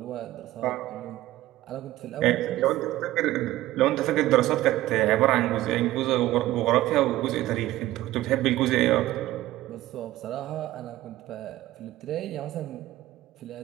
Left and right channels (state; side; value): quieter; left; 15.8 dB